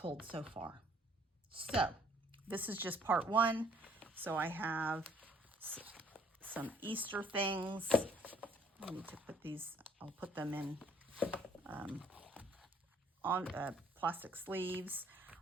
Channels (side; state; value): both; normal; correlation 0.62